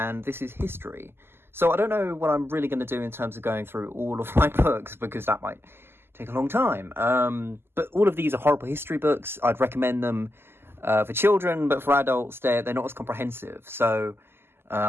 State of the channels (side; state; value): left; late; 0.11 ms